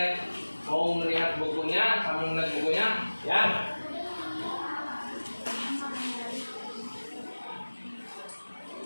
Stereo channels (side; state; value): both; inverted; correlation -1.00